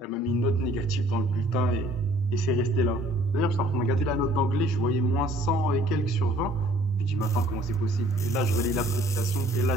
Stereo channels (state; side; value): normal; both; correlation 0.57